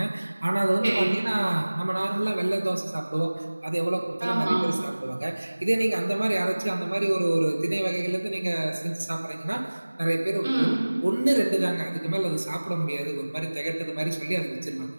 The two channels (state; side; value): inverted; both; correlation -1.00